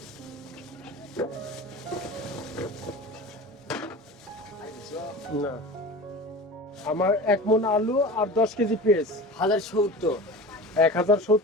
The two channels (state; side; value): normal; both; correlation 0.34